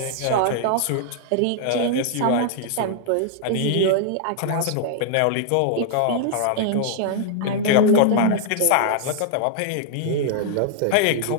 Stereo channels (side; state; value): both; different; correlation -0.01